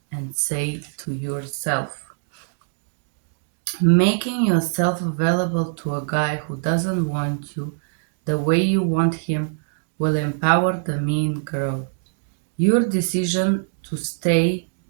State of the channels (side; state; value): left; silent; digital silence